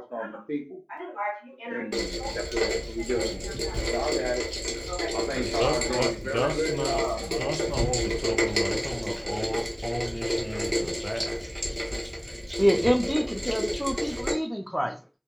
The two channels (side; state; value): both; identical; correlation 1.00